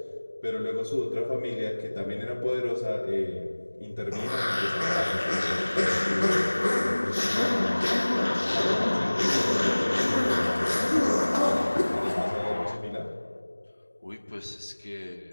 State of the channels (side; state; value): both; inverted; correlation -1.00